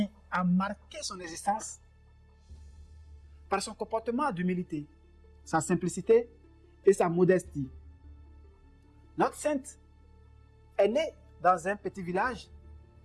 a marqué son existence par son comportement d'humilité, sa simplicité et sa modestie. Notre sainte est née dans un petit village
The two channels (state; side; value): identical; both; correlation 1.00